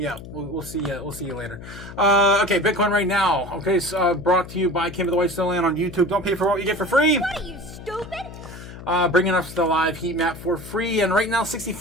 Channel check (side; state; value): left; noise; hum, 14 dB below the sound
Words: up. We'll see you later. Okay, Bitcoin right now. Okay, so, brought to you by Kim of the White Snowland on YouTube. Don't pay for what you get for free. What are you, stupid? Bringing us the live heat map for free. And right now,